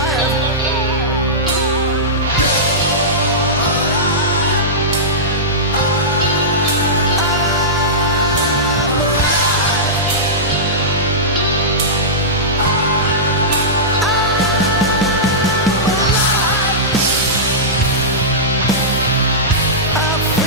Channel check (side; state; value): both; normal; correlation -0.15